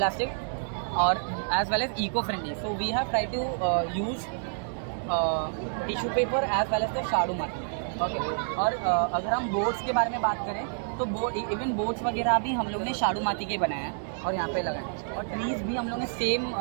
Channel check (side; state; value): left; silent; digital silence